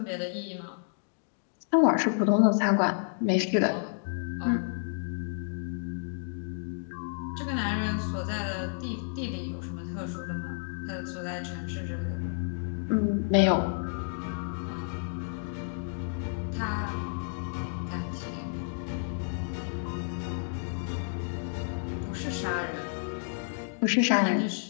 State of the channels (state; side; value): silent; right; digital silence